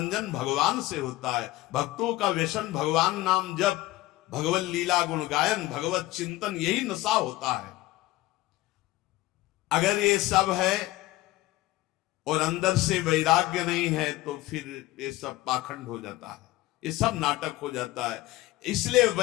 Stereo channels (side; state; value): right; quieter; 17.6 dB